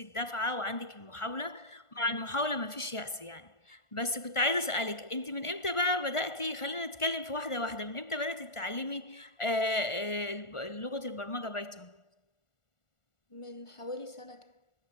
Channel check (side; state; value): right; late; 1.4 ms